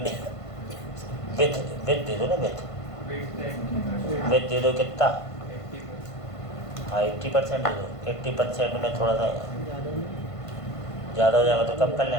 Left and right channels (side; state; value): right; late; 1.5 ms